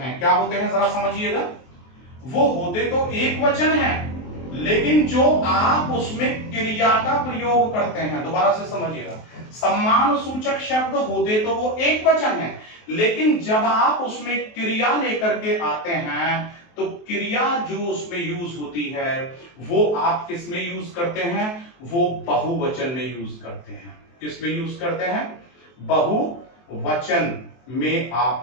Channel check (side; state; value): right; late; 23 ms